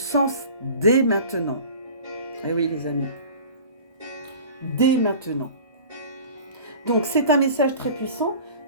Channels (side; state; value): both; inverted; correlation -0.41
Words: dès maintenant. Eh oui les amis, dès maintenant. Donc c'est un message très puissant